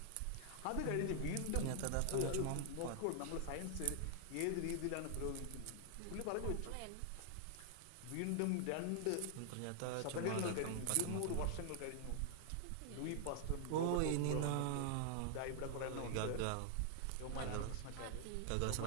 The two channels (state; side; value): different; both; correlation -0.01